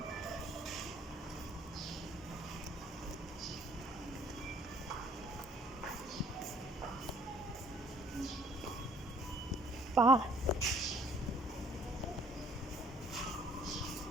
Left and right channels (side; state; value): both; normal; correlation 0.59